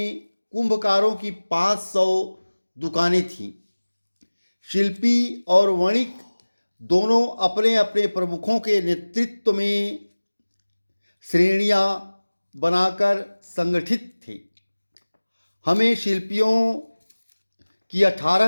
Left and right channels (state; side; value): inverted; both; correlation -1.00